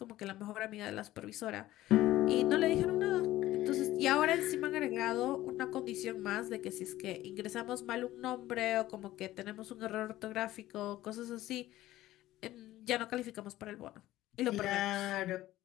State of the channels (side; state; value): right; quieter; 15.4 dB